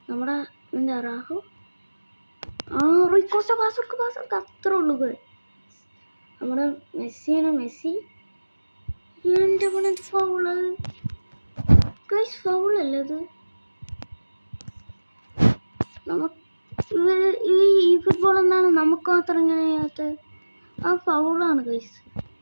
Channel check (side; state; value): both; inverted; correlation -1.00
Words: നമ്മുടെ എന്താ റാഹു റൂയിക്കോസ്റ്റ പാസ് അത്രേ ഉള്ളൂ. നമ്മുടെ മെസ്സിയാണ്, മെസ്സി എൻ്റെ പണത് ഫൗള് ഗൈസ്, ഫൗളല്ലേ അത്. ഈ ഫുട്ബോൾ എന്താണ് നമുക്ക് മാത്രം ഇങ്ങനെ ചെയ്യാത്തത്? ആ ഫൗളാണ് ഗൈസ്.